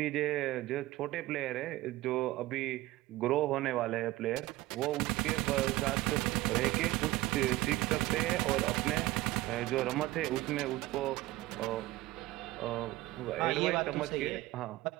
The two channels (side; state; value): left; quieter; 17.9 dB